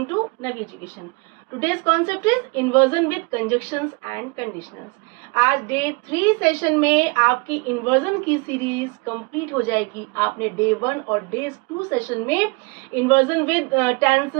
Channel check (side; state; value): left; quieter; 29.0 dB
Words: to Navi Education. Today's concept is inversion with conjunctions and conditionals. आज day 3 session में आपकी inversion की series complete हो जाएगी. आपने डे 1 और डे 2 सेशन में इन्वर्जन विद